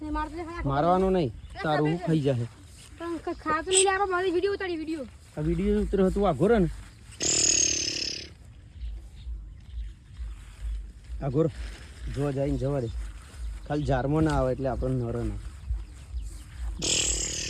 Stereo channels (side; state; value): both; identical; correlation 1.00